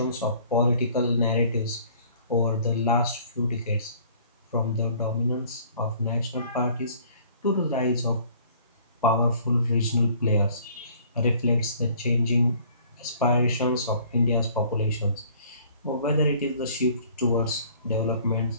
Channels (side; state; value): both; inverted; correlation -0.55